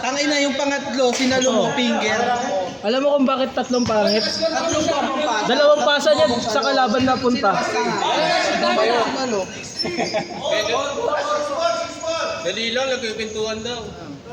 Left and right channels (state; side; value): identical; both; correlation 1.00